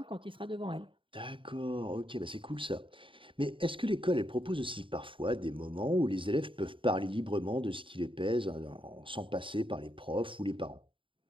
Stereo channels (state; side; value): late; left; 0.25 ms